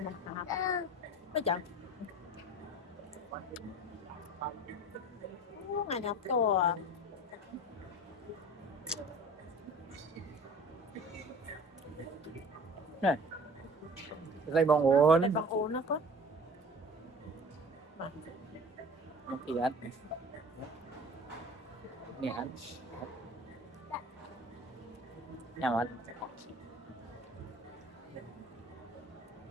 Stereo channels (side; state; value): both; normal; correlation 0.42